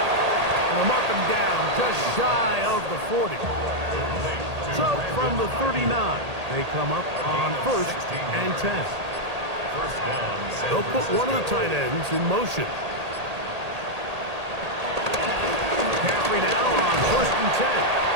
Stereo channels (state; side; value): late; left; 1.8 ms